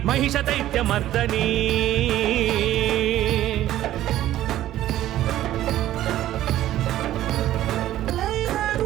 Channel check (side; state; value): left; quieter; 13.5 dB